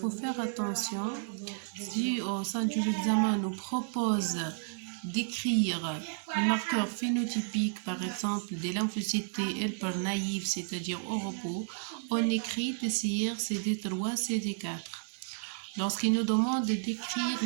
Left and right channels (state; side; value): silent; left; digital silence